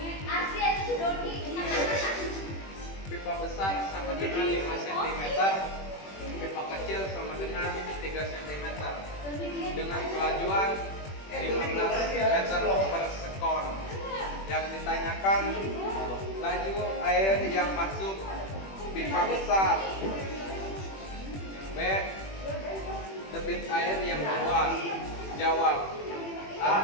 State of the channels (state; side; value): late; right; 21 ms